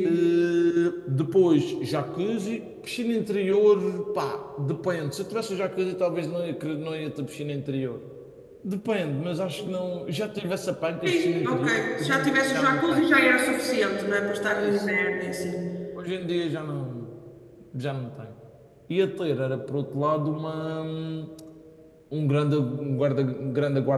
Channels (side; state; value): both; identical; correlation 1.00